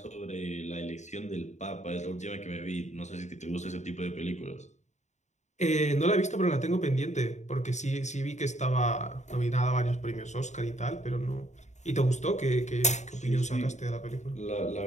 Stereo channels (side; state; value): right; late; 0.34 ms